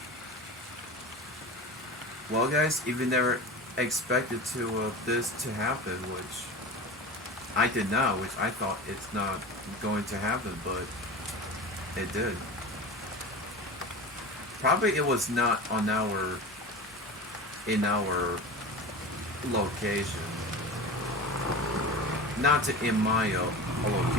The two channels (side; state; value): both; normal; correlation 0.31